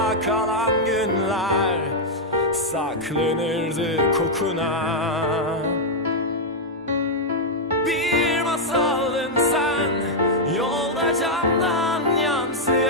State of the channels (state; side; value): normal; both; correlation -0.02